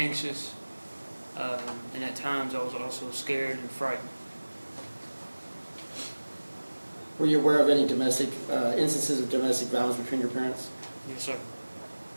and at times I was also scared and frightened. Were you aware of any domestic instances of domestic violence between your parents? Yes, sir.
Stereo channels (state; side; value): inverted; both; correlation -1.00